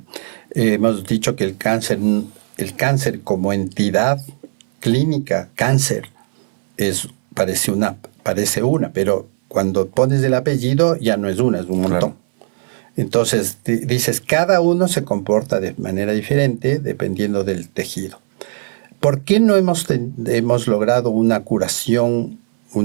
hemos dicho que el cáncer como entidad clínica, cáncer, parece una, pero cuando pones el apellido ya no es una, es un montón. Claro. Entonces dices, cada uno se comporta de manera diferente dependiendo del tejido. ¿Por qué no hemos logrado una curación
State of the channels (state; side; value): silent; left; 61 dB below the other